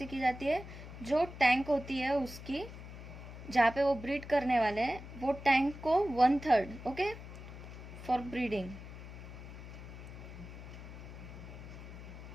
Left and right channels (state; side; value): noise; left; hum, 12 dB below the sound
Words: की जाती है, जो टैंक होती है उसकी जहाँ पे वो ब्रीड करने वाले हैं वो टैंक को 1/3 ओके फॉर ब्रीडिंग.